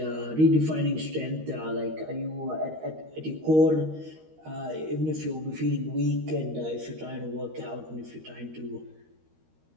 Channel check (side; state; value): left; late; 13 ms